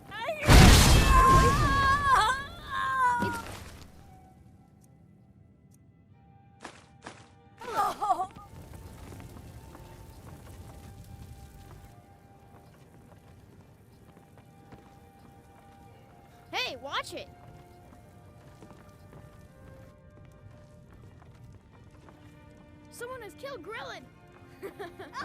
Hey, watch it! Someone has killed Grillin!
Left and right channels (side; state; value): both; identical; correlation 1.00